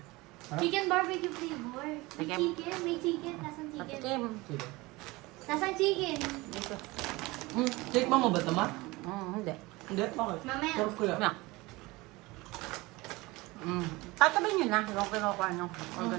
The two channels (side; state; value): left; quieter; 22.0 dB